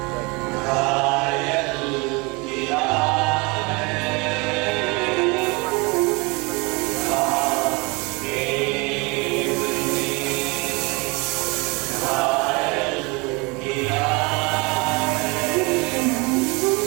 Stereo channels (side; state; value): left; quieter; 27.4 dB